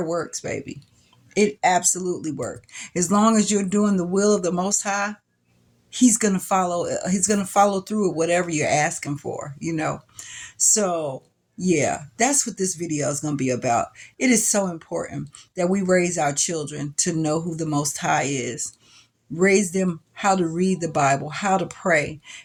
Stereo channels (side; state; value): both; identical; correlation 1.00